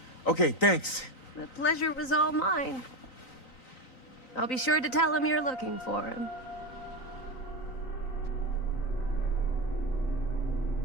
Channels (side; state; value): right; late; 3.9 ms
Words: Okay, thanks. The pleasure was all mine. I'll be sure to tell him you're looking for him.